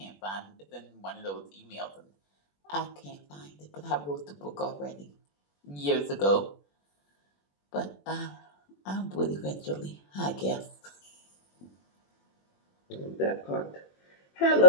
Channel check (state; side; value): late; right; 21 ms